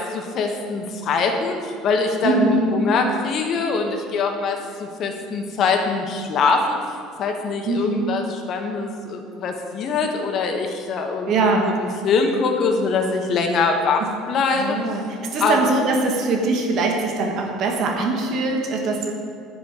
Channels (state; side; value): normal; both; correlation 0.49